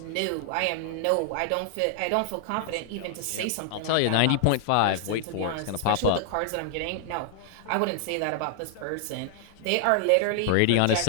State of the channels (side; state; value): both; different; correlation 0.00